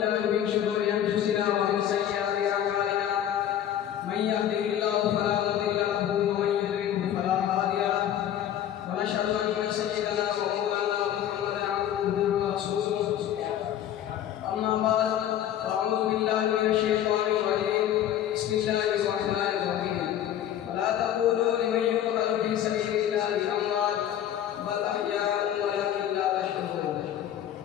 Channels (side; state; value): right; quieter; 10.7 dB